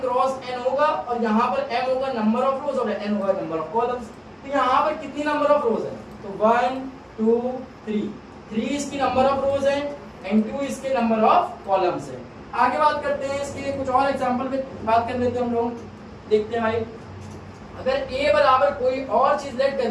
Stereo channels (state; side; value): identical; both; correlation 1.00